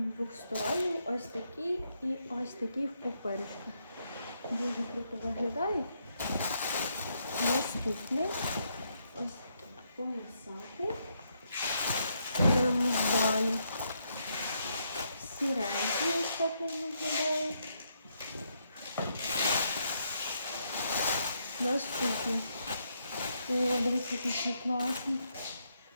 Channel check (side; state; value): both; inverted; correlation -0.78